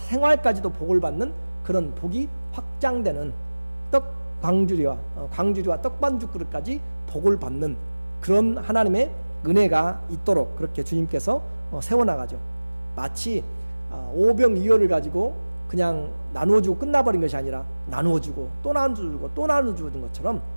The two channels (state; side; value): inverted; both; correlation -1.00